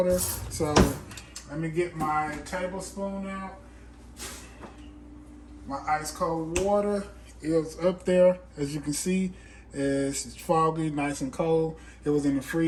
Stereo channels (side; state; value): both; identical; correlation 1.00